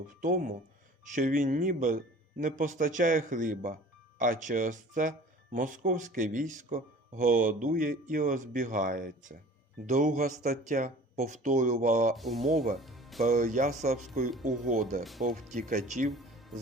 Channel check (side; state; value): both; normal; correlation 0.45